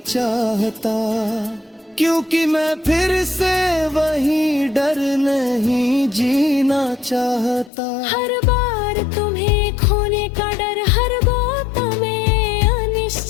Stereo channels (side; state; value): right; drops out; at 7.7 s